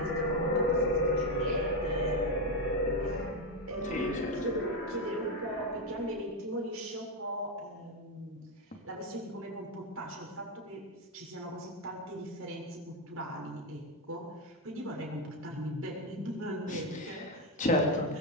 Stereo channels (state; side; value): normal; both; correlation 0.07